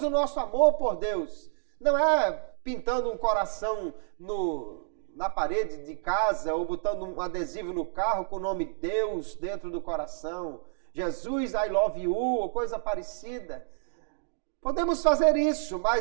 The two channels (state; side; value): silent; left; digital silence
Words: o nosso amor por Deus? Não é pintando um coração na parede de casa ou botando um adesivo no carro com o nome Deus dentro do coração, Jesus, I love you, ou coisa parecida. Podemos fazer isso,